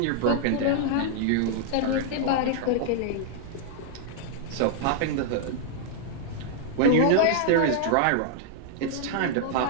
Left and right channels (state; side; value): different; both; correlation -0.01